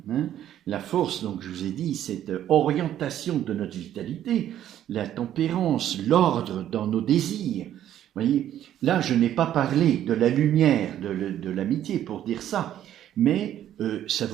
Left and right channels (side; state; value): left; quieter; 11.4 dB